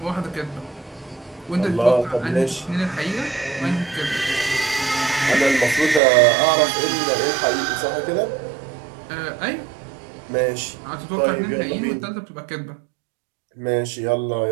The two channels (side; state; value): left; drops out; at 6.0 s